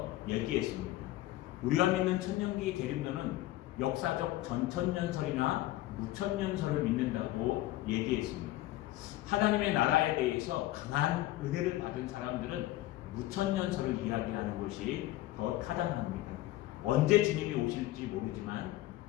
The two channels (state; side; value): quieter; right; 16.1 dB